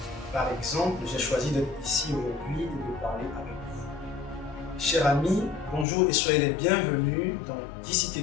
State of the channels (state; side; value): drops out; right; at 5.9 s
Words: Par exemple, j'ai choisi d'être ici aujourd'hui et de parler avec vous. Chers amis, bonjour et soyez les bienvenus dans